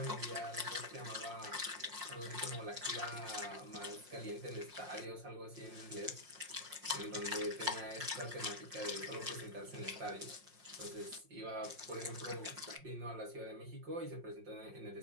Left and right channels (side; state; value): left; late; 5.6 ms